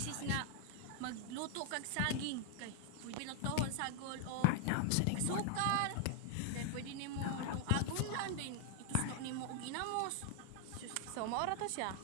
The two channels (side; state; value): both; different; correlation 0.00